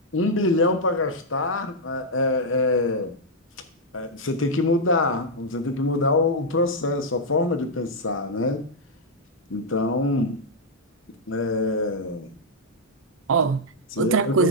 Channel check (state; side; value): normal; both; correlation -0.03